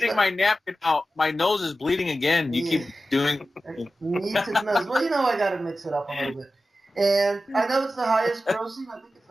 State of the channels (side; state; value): both; normal; correlation 0.93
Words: my napkin out. My nose is bleeding again. You keep doing... Need to nose. Well, I got to mix it up a little bit. And I know it's the highest grossing. I think it's